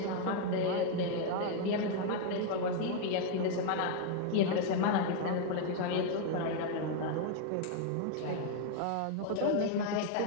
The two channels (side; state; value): both; different; correlation 0.00